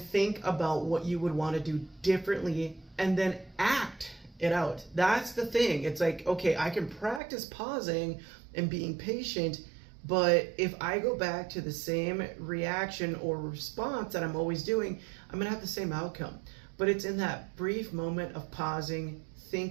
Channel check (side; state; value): left; drops out; at 7.2 s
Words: about what you would want to do differently, and then act it out. That's the thing. It's like, okay, I can practice pausing and being patient, but if I go back to the same reaction or response that I'm always doing, I'm gonna have the same outcome. But it's in that brief moment of pausing,